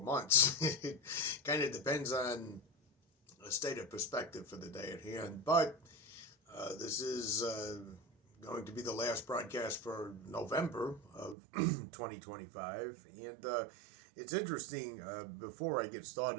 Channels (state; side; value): drops out; left; at 11.4 s